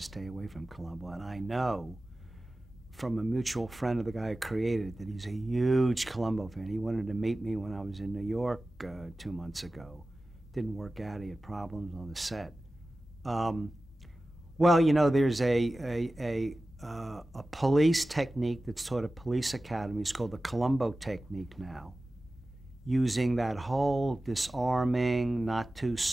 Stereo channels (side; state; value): both; normal; correlation 0.95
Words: stay away from Columbo, and I know from a mutual friend of the guy who created it that he's a huge Columbo fan. He wanted to meet me when I was in New York 2 months ago. Didn't work out. He had problems on the set. Well, there's a police technique that's taught at police academies called the Columbo technique now, using that whole disarming, not too